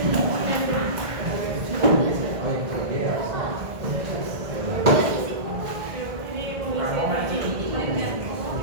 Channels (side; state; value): left; late; 1.7 ms